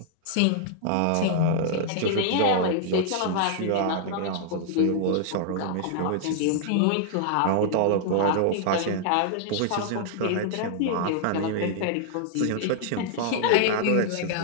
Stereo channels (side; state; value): both; different; correlation -0.01